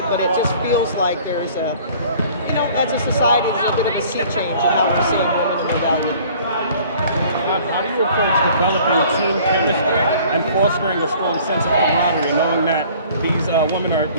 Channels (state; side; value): inverted; both; correlation -0.52